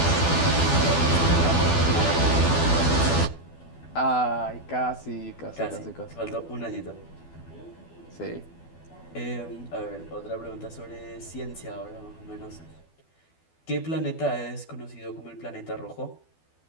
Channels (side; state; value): right; late; 12 ms